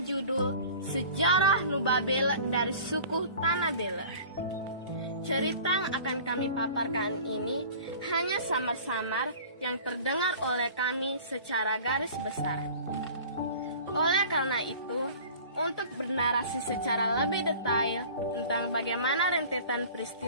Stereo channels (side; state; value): both; inverted; correlation -0.43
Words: judul Sejarah Nubabela dari Suku Tanah Bela. Cerita yang akan kami paparkan ini hanya samar-samar yang terdengar oleh kami secara garis besar. Oleh karena itu, untuk bernarasi secara lebih detail tentang bagaimana rentetan